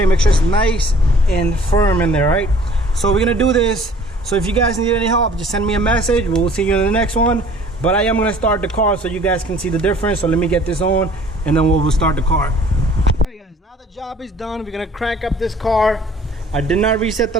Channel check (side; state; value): both; normal; correlation 0.53